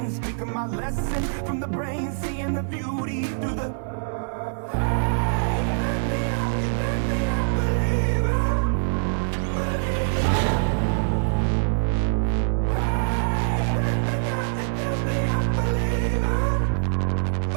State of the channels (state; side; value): silent; left; digital silence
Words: speaking my lesson from the brain, seeing the beauty through the. Hey, let me up, believer.